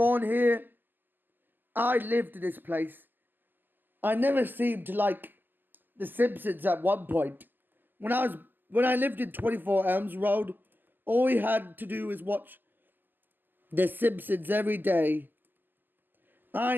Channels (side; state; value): left; late; 0.089 ms